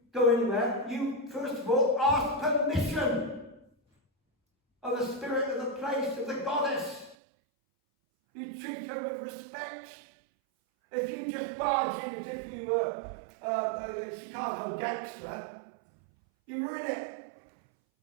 go anywhere, you first of all ask permission of the spirit of the place, of the goddess. You treat her with respect. If you just barge in as if you were a Chicago gangster, you ruin it.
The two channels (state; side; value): drops out; left; at 7.2 s